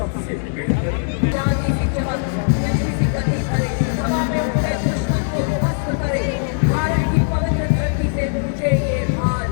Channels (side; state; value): right; silent; digital silence